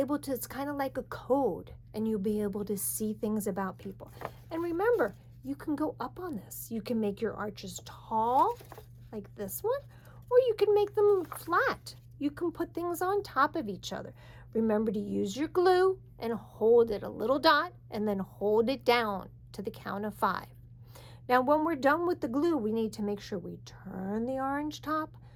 to, it's kind of like a code, and you'll be able to see things about people. And remember, you can go up on this. You can make your arches tall, like this one, or you can make them flat. You can put things on top of each other. Remember to use your glue and hold it a little dot, and then hold it down to the count of 5. Now, when we're done with the glue, we need to make sure we turn the orange top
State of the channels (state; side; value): identical; both; correlation 1.00